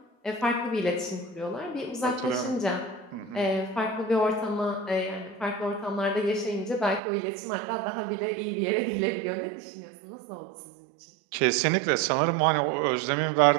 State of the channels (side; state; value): left; drops out; at 7.0 s